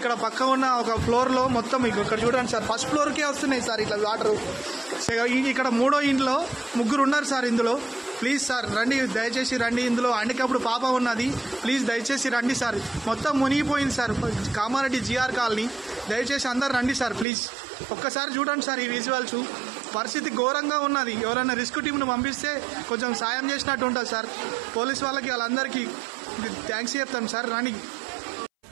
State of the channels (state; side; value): drops out; left; at 17.2 s